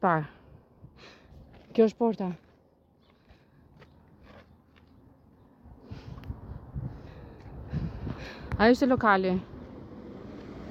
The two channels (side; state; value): both; identical; correlation 1.00